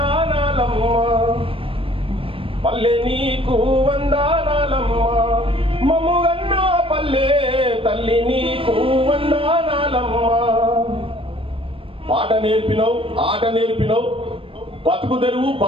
పల్లె నీకు వందనాలమ్మ, మమ్ముగన్నా పల్లె తల్లి నీకు వందనాలమ్మ. పాట నేర్పినవు, ఆట నేర్పినవు, బతుకు తెరువు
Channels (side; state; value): left; late; 0.26 ms